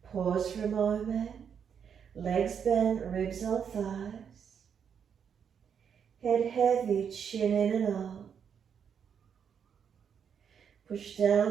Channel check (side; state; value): left; quieter; 7.5 dB